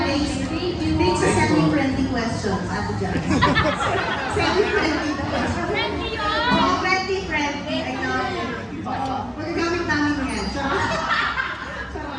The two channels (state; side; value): identical; both; correlation 1.00